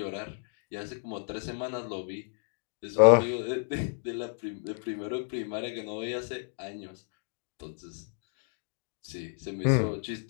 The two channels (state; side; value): silent; right; digital silence